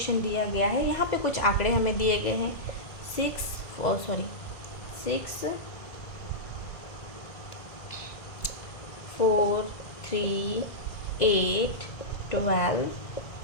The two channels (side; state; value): right; late; 2.0 ms